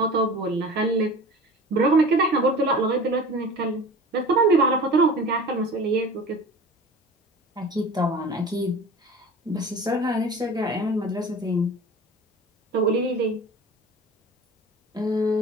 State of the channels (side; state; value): both; normal; correlation 0.38